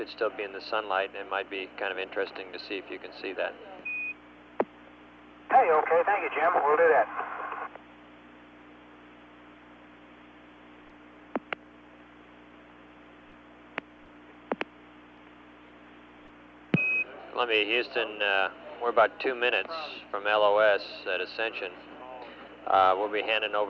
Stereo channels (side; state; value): both; identical; correlation 1.00